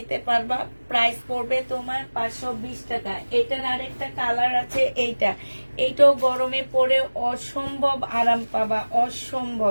পারবা। প্রাইস পড়বে তোমার 520 টাকা। এটার আরেকটা কালার আছে, এইটাও গরমে পরে অসম্ভব আরাম পাবা, অসম্ভব,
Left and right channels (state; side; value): inverted; both; correlation -1.00